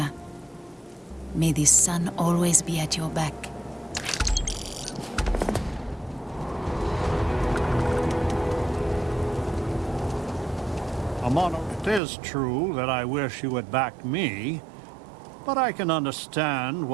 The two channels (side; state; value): left; drops out; at 12.0 s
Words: May the sun always be at your back. Amano, it is true that I wish you had backed me, but I can understand